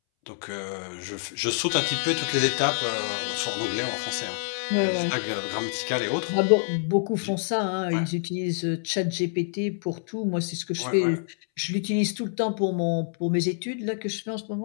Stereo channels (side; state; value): right; silent; 60 dB below the other